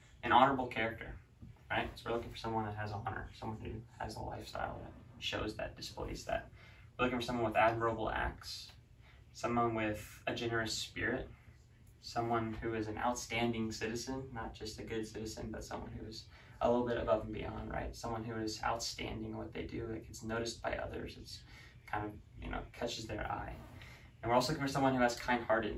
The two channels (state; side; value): identical; both; correlation 1.00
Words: an honorable character, right? So we're looking for someone that has honor, someone who has a lifestyle that shows that, displays that. We're looking for someone with admirable acts, someone with a generous spirit, someone who is an outstanding citizen, not just a good citizen, but someone who is a little bit above and beyond, right? Someone who is outstanding in what they do, that gets noticed by others. It's kind of, catches their eye. And we're also looking for someone who has